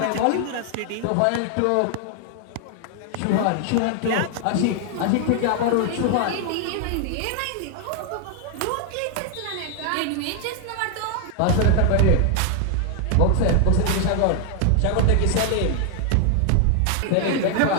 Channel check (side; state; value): both; different; correlation 0.00